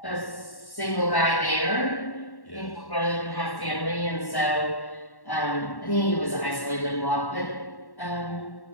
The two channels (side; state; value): right; late; 1.1 ms